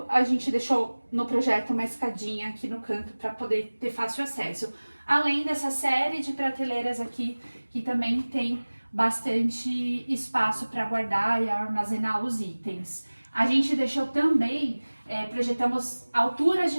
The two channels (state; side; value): inverted; both; correlation -1.00